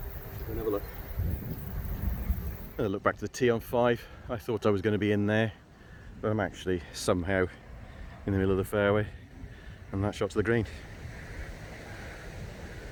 Another look. Look back to the tee on 5. I thought I was going to be in there, but I'm actually somehow in the middle of the fairway, and that shot to the green.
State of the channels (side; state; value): both; identical; correlation 1.00